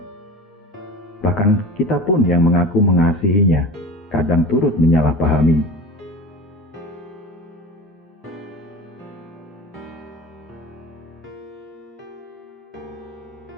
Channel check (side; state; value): both; normal; correlation 0.34